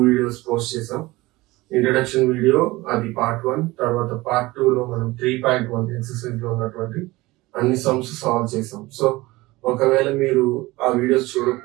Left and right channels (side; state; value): left; quieter; 20.4 dB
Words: videos post చేసాం. Introduction video అది part 1, తర్వాత part 2 లో మనం 3.1 ఎక్సర్సైజ్ లో ఉన్నటువంటి అన్ని సమ్స్ సాల్వ్ చేసాం. సో ఒకవేళ మీరు ఆ వీడియోస్